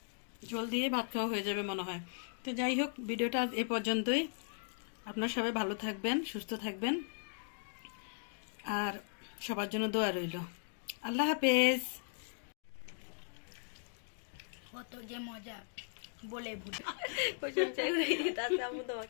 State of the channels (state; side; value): silent; right; digital silence